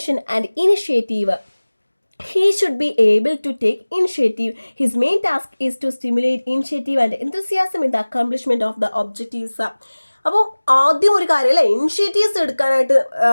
and initiative. He should be able to take initiative. His main task is to stimulate initiative and enthusiasm in the accomplishment of the objectives. അപ്പോൾ ആദ്യം ഒരു കാര്യം അല്ലേ, ഇനിഷ്യേറ്റീവ്സ് എടുക്കാനായിട്ട്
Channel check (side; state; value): both; inverted; correlation -1.00